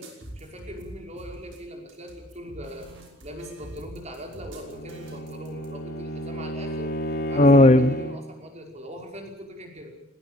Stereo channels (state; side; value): normal; both; correlation 0.57